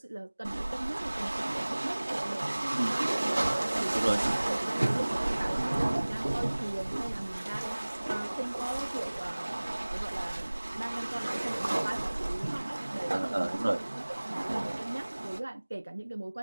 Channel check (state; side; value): inverted; both; correlation -1.00